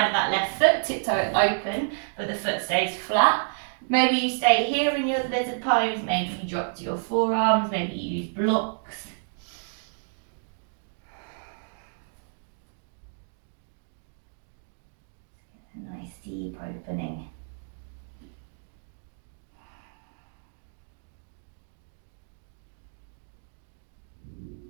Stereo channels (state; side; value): silent; left; digital silence